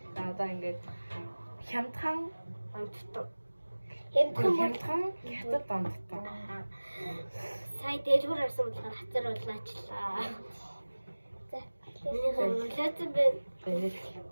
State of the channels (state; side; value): inverted; both; correlation -1.00